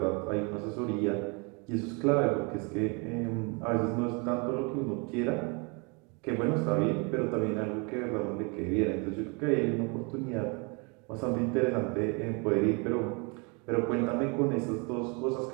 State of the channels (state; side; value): quieter; left; 32.0 dB